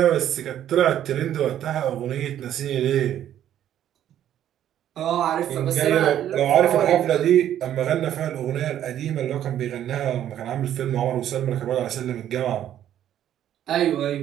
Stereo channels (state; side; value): quieter; left; 11.1 dB